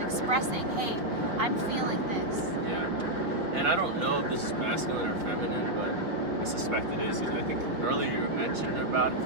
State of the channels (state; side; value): late; left; 5.1 ms